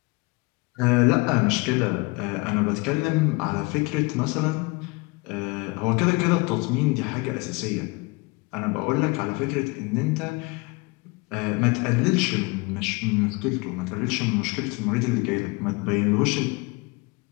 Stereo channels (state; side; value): quieter; right; 26.6 dB